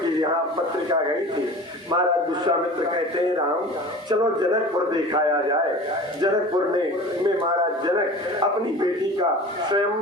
यहाँ पत्रिका गई थी। महाराज विश्वामित्र कहते हैं राम चलो जनकपुर दिखाया जाए। जनकपुर में महाराज जनक अपनी बेटी का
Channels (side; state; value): both; normal; correlation 0.38